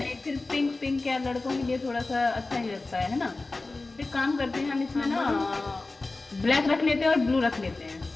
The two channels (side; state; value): right; quieter; 3.4 dB